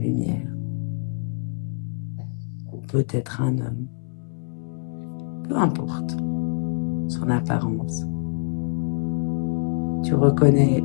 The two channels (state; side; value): silent; right; 62 dB below the other